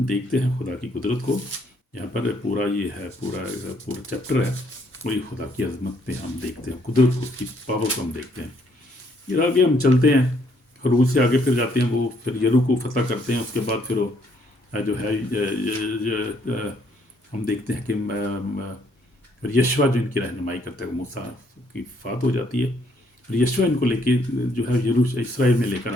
دیکھتے ہیں خدا کی قدرت کو، یہاں پر پورا یہ ہے، پورا چیپٹر ہے، وہی خدا کی عظمت پہ ہم دیکھتے ہیں، قدرت کو، اس کی پاور کو ہم دیکھتے ہیں۔ پھر آگے ہم چلتے ہیں، خروج سے آگے پھر جاتے ہیں، وہ پھر یرو کو فتح کرتے ہیں، اس کے بعد پھر وہ جو ہے ہم دیکھتے ہیں کہ یشوع جو ان کی رہنمائی کرتا ہے، موسیٰ کی وفات ہو جاتی ہے، اور یشوع ان کو لے کے جو ہے اسرائیل میں لے کر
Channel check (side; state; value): right; late; 1.4 ms